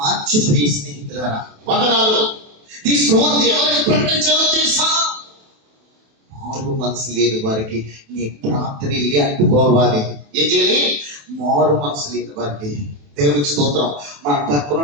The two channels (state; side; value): late; left; 28 ms